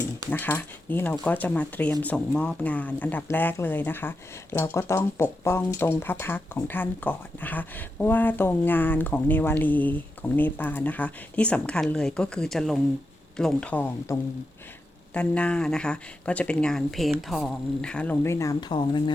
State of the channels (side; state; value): both; normal; correlation 0.87